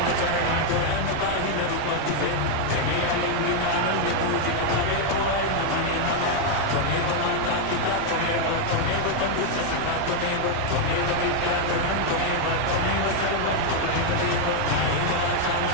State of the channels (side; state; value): both; different; correlation 0.01